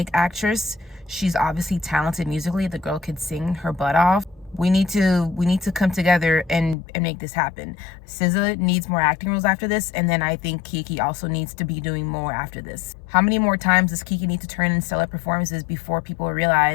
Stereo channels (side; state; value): right; drops out; at 6.8 s